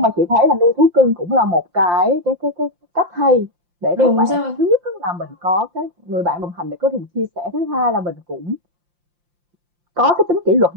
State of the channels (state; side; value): late; left; 5.7 ms